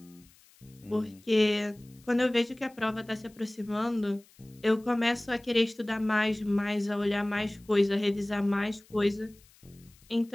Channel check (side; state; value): left; noise; hiss, 28 dB below the sound